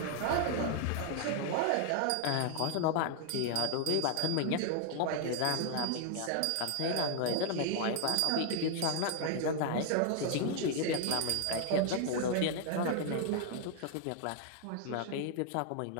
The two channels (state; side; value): different; both; correlation 0.00